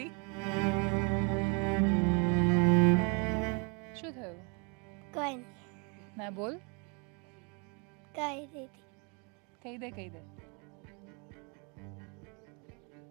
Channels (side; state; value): left; quieter; 33.7 dB